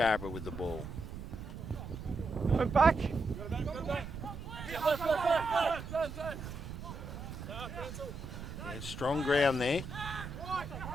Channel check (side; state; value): right; noise; rumble, 9 dB below the sound